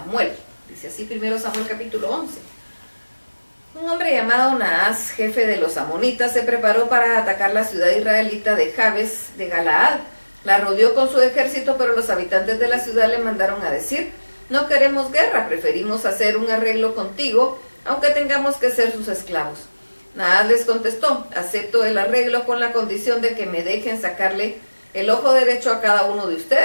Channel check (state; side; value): inverted; both; correlation -1.00